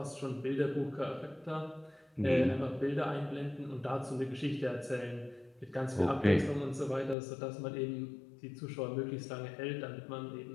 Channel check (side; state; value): right; drops out; at 7.2 s